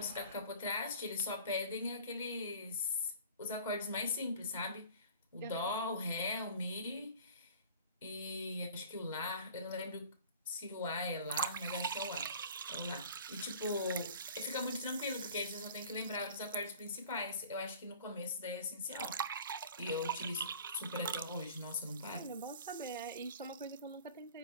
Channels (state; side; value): inverted; both; correlation -0.45